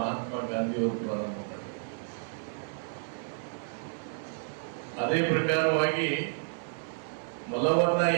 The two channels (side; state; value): left; silent; 57 dB below the other